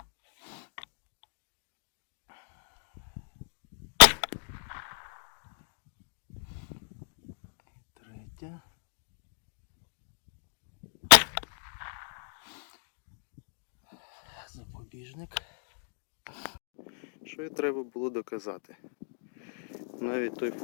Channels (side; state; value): right; silent; digital silence